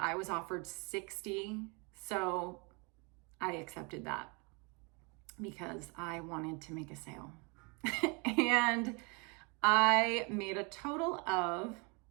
was offered $60. So I accepted that because I wanted to make a sale. And I made a total of,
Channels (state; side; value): quieter; left; 31.5 dB